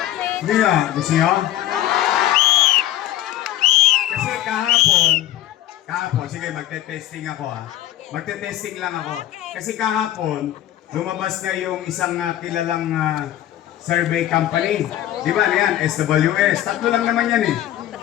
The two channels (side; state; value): right; quieter; 13.3 dB